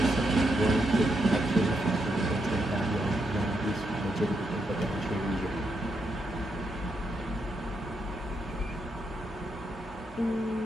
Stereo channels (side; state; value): both; normal; correlation 0.81